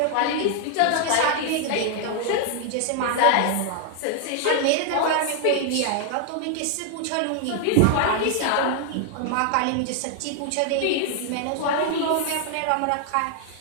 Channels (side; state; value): both; different; correlation 0.00